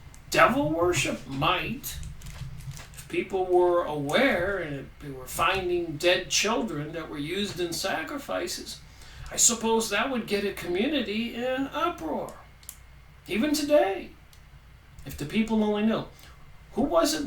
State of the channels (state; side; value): identical; both; correlation 1.00